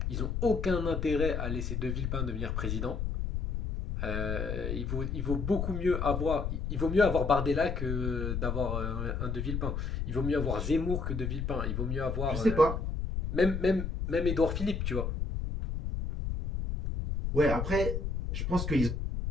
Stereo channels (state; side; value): noise; left; rumble, 2 dB below the sound